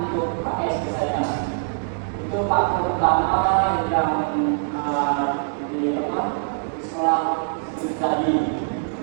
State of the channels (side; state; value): left; silent; digital silence